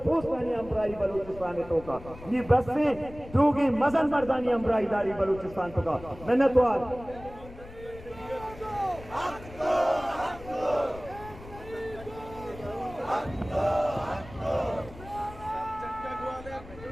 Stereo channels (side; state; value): left; noise; rumble, 16 dB below the sound